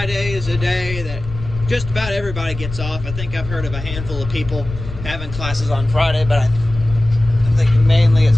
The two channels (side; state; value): left; noise; rumble, 10 dB below the sound